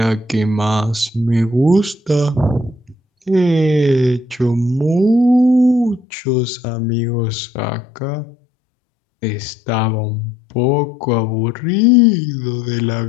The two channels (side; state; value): right; drops out; at 6.0 s